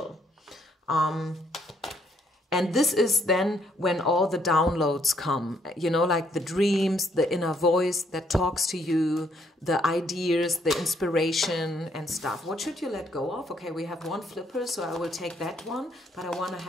And this is then when all the downloads come, you know, like the dreams, the inner voice that talks to you, the ideas, the inspiration and stuff. What should you let go of? Okay, we have one flipper, so I will take that one, but I want to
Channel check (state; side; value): normal; both; correlation 0.70